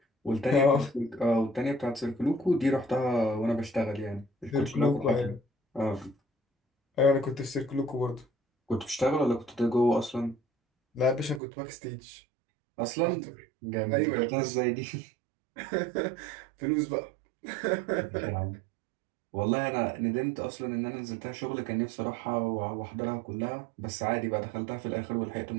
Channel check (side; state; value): left; drops out; at 11.4 s